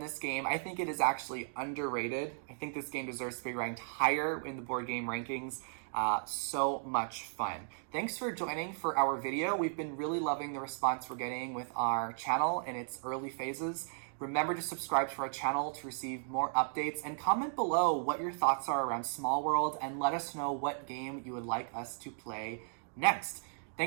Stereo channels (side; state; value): left; silent; digital silence